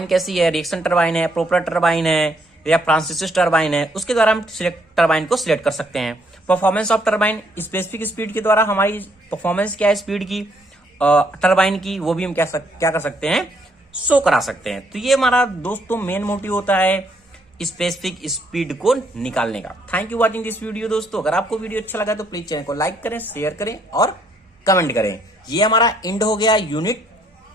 कैसी है, रिएक्शन टरबाइन है, प्रोपेलर टरबाइन है या फ्रांसिस टरबाइन है। उसके द्वारा हम टरबाइन को सिलेक्ट कर सकते हैं। Performance of turbine, specific speed के द्वारा हमारी परफॉर्मेंस क्या है स्पीड की, टरबाइन की, वो भी हम क्या कर सकते हैं, शो करा सकते हैं। तो ये हमारा दोस्तों मेन मोटिव होता है स्पेसिफिक स्पीड को निकालने का। Thank you watching this video दोस्तों। अगर आपको वीडियो अच्छा लगा तो प्लीज चैनल को लाइक करें, शेयर करें और कमेंट करें। ये हमारा एंड हो गया यूनिट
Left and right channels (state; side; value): normal; both; correlation 0.69